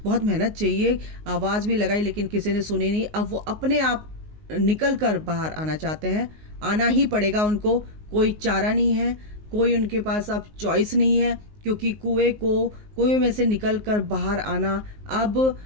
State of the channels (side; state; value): left; late; 19 ms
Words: बहुत मेहनत चाहिए। आवाज़ भी लगाई लेकिन किसी ने सुनी नहीं। अब वो अपने आप निकल कर बाहर आना चाहते हैं, आना ही पड़ेगा उनको, कोई चारा नहीं है, कोई उनके पास अब चॉइस नहीं है, क्योंकि कुएं में से निकल कर बाहर आना अब